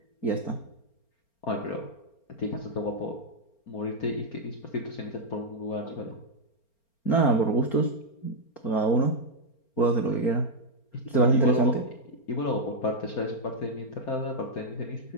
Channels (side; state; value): right; late; 4.4 ms